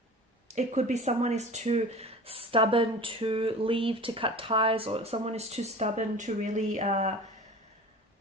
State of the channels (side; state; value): both; normal; correlation 0.38